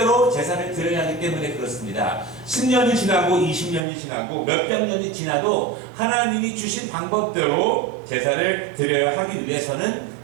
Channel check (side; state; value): left; drops out; at 3.8 s